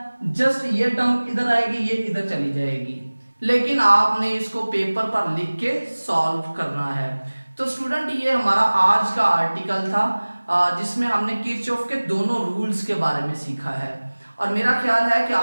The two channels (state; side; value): inverted; both; correlation -1.00